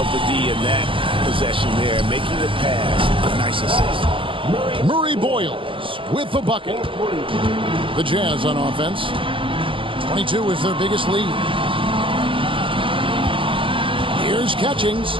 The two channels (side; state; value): left; late; 0.25 ms